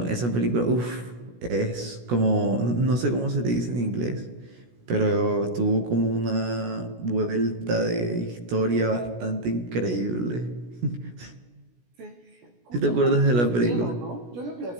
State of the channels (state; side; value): late; left; 16 ms